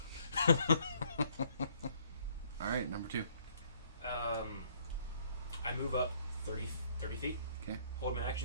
right? Alright, number 2. I move up 30 feet. Okay. Hold my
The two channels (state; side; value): inverted; both; correlation -0.64